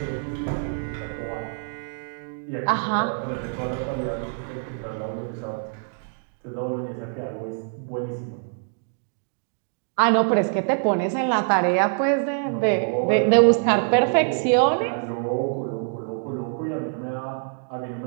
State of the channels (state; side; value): silent; left; 62 dB below the other